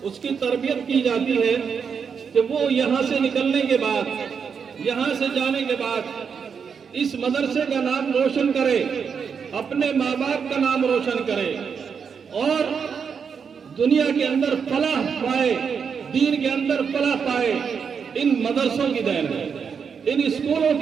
اس کی تربیت کی جاتی ہے کہ وہ یہاں سے نکلنے کے بعد، یہاں سے جانے کے بعد اس مدرسے کا نام روشن کرے، اپنے ماں باپ کا نام روشن کرے، اور دنیا کے اندر فلاح پائے، دین کے اندر فلاح پائے۔ ان مدرسوں کی دین ہے، ان اسکولوں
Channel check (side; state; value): left; quieter; 6.4 dB